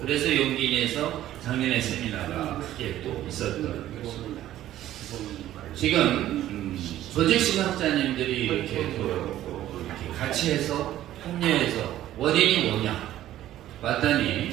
그래서 용기 내서 작년에 세미나가 크게 또 있었던 것입니다. 지금 조직신학자님들이 이렇게 또 이렇게 같이 해서 합류해서 원인이 뭐냐 봤더니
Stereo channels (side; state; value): left; quieter; 13.3 dB